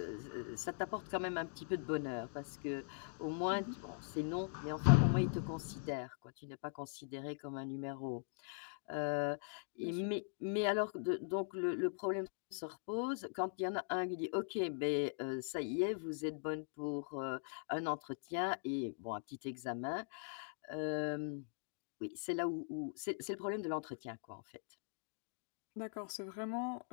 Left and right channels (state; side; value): silent; right; digital silence